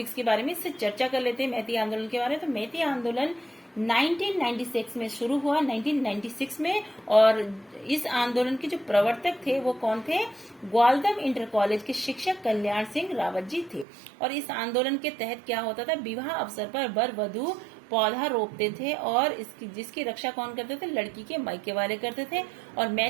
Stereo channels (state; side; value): drops out; left; at 13.9 s